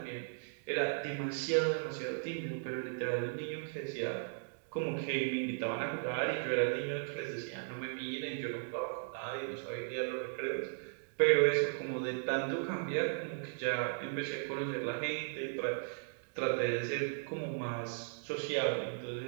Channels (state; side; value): silent; left; digital silence